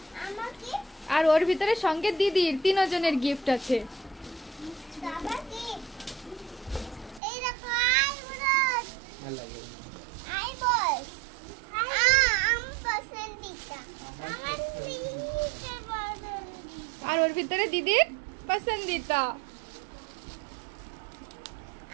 আর ওর ভিতরে সঙ্গে দিদির তিনজনের গিফট আছে। আর ওর ভিতরে দিদির পছন্দিতা।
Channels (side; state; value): left; drops out; at 7.2 s